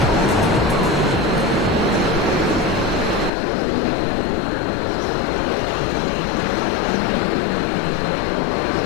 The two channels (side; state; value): right; drops out; at 3.3 s